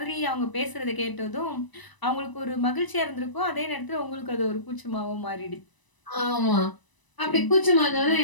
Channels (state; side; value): late; right; 1.0 ms